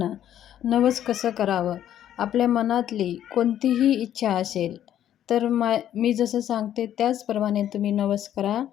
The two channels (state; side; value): quieter; right; 11.0 dB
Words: नवस कसं करावं. आपल्या मनातली कोणतीही इच्छा असेल तर मी जसं सांगते त्याचप्रमाणे तुम्ही नवस करा.